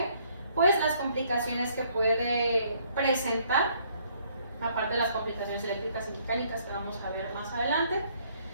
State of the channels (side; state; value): both; inverted; correlation -0.65